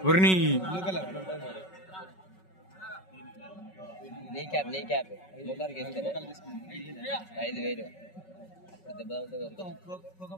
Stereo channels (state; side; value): late; right; 5.3 ms